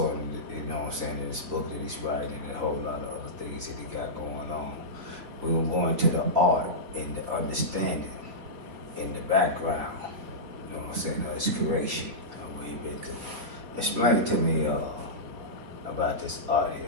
in, you know what I'm saying, in this book that he's writing and a whole lot of other things that he got going on. We will go into the art and the understanding in the background, you know what I'm saying, of his creation, where he been to. Explain to me about this art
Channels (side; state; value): left; late; 4.1 ms